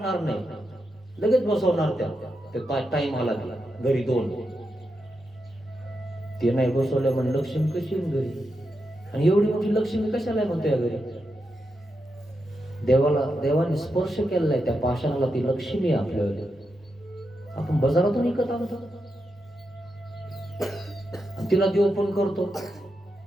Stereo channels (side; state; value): both; normal; correlation 0.86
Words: नाही. लगेच बसवणार त्या टाइम आला घरी 2 ते नाही बसवल्या म्हण लक्ष्मी कशी घरी. आणि एवढी मोठी लक्ष्मी कशाला म्हणतो या घरी. देवाने स्पर्श केलेला त्या पाषाणाला. ती लक्ष्मी आपल्याला आपण बाजारातून विकत आणतो. तिला देव पण करतो